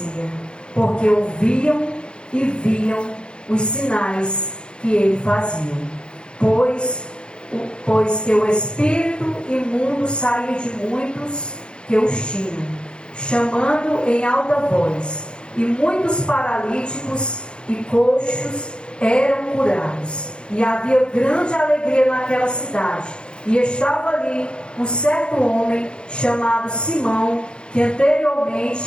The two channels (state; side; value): late; right; 0.052 ms